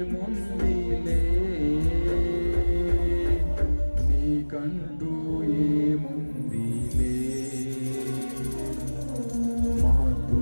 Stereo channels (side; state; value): both; inverted; correlation -1.00